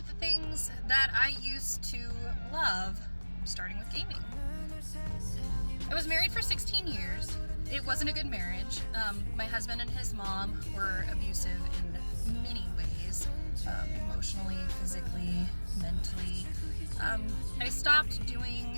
the things that I used to love, starting with gaming. I was married for 16 years. It wasn't a good marriage. My husband and his mom were abusive in many ways, emotionally, physically, mentally. I stopped doing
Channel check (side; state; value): both; inverted; correlation -1.00